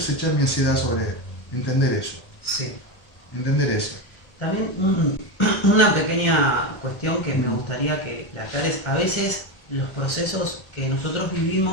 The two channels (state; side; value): late; right; 1.3 ms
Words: echar mi ansiedad sobre Él. Entender eso. Sí. Entender eso. También una pequeña cuestión que me gustaría que la aclares. A veces los procesos que nosotros